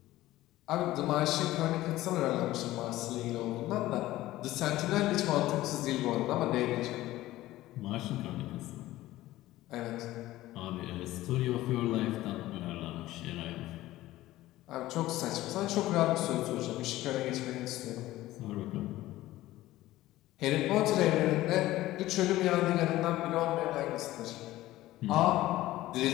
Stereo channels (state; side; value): quieter; right; 16.2 dB